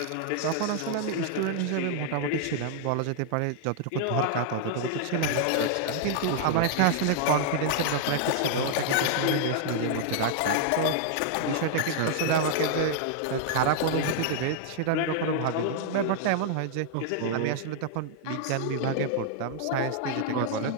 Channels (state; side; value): different; both; correlation -0.01